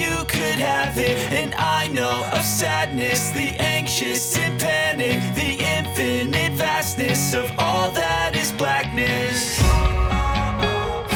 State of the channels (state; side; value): identical; both; correlation 1.00